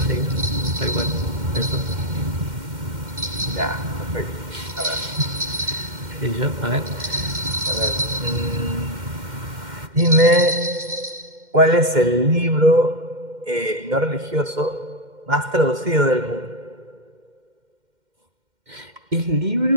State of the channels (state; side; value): late; left; 2.1 ms